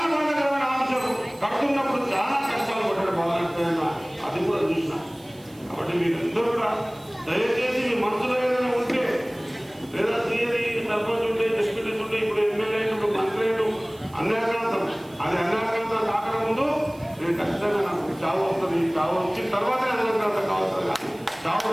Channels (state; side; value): noise; right; hiss, 26 dB below the sound